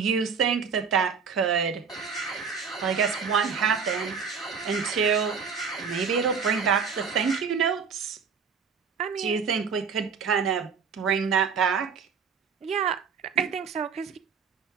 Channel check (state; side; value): quieter; left; 6.1 dB